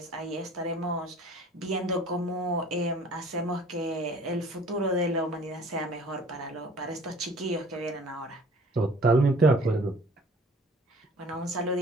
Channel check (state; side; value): normal; both; correlation 0.50